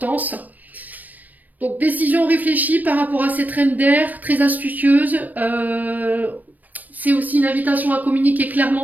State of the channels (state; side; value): late; left; 0.083 ms